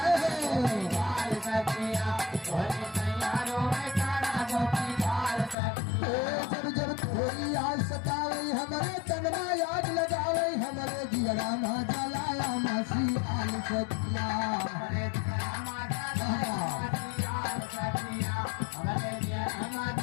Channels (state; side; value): drops out; right; at 5.6 s